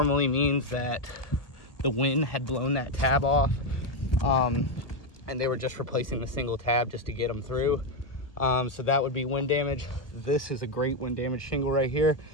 means that the wind had blown that tab off, and they were just replacing the single tab just to get them through. So that would be wind damage. This is a great wind damage shingle right here.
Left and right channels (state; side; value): late; right; 1.3 ms